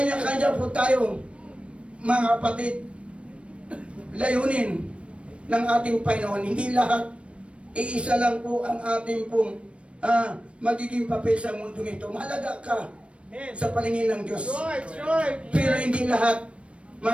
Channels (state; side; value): late; left; 0.060 ms